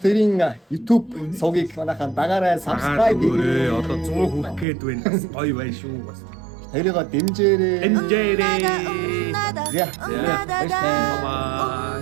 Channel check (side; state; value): left; drops out; at 4.7 s